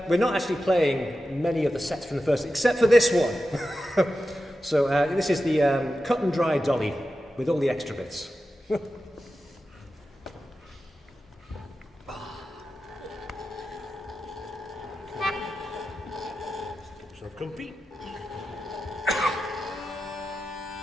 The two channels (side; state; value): both; normal; correlation 0.92